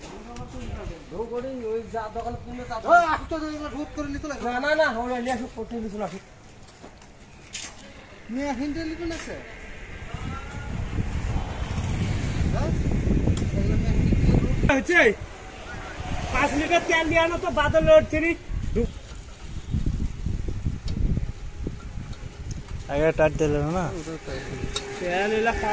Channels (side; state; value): both; identical; correlation 1.00